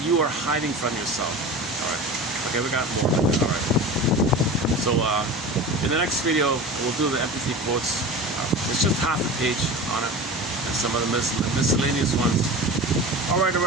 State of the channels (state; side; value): normal; both; correlation 0.33